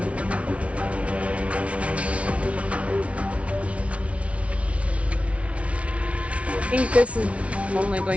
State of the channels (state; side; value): late; left; 0.063 ms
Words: I think this is only